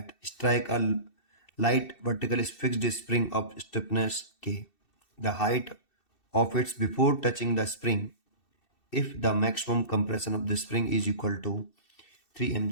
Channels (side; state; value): right; late; 2.7 ms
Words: strike a light vertical fixed spring of stiffness k. The height of its before touching the spring if the maximum compression of the spring is equal to 3